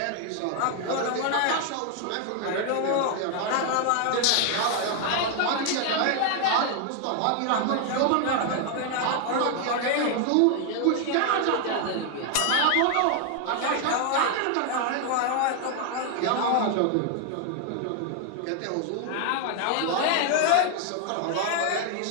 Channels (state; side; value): different; both; correlation 0.00